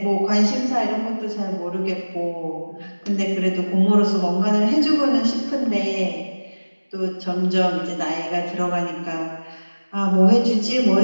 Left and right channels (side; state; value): both; inverted; correlation -1.00